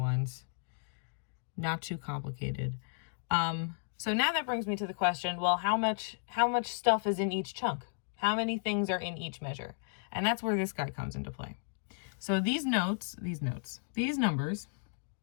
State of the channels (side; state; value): right; silent; digital silence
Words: Not too complicated. So now that brings me to the question, well, how much stuff is in each chunk? How many things are in each measure? And that's where this guy comes into play. So these numbers